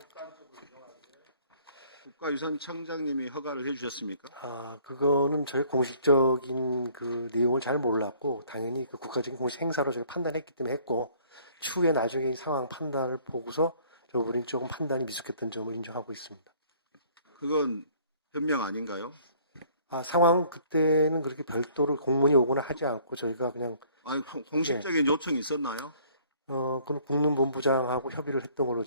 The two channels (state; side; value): inverted; both; correlation -0.58